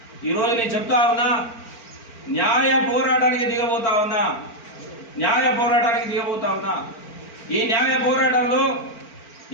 ఈరోజు నేను చెప్తా ఉన్నా, న్యాయ పోరాటానికి దిగబోతా ఉన్నా. ఈ న్యాయ పోరాటంలో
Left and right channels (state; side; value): late; right; 4.4 ms